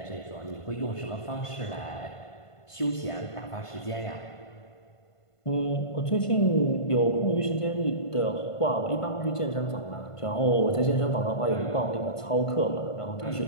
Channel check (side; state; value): right; late; 1.5 ms